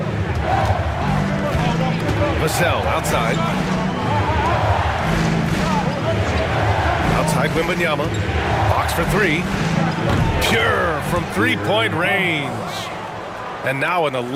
Vassell outside. Outside Wembanyama. Fox for 3. Pure from three-point range. And now an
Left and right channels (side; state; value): both; identical; correlation 1.00